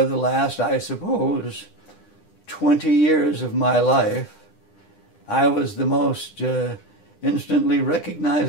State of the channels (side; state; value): right; late; 9.9 ms